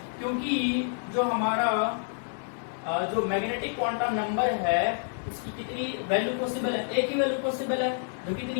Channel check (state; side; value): silent; right; digital silence